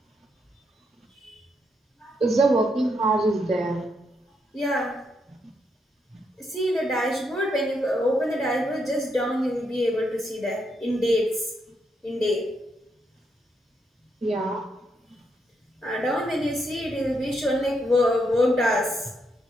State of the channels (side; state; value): both; normal; correlation 0.79